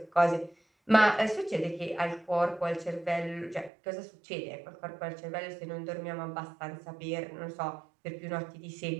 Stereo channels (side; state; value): left; drops out; at 3.7 s